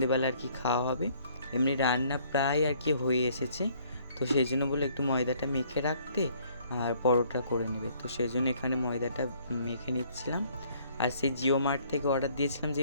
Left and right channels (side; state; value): both; inverted; correlation -0.62